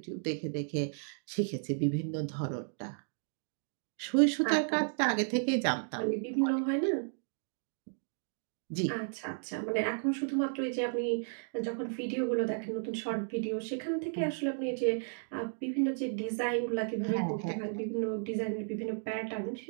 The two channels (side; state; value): left; silent; digital silence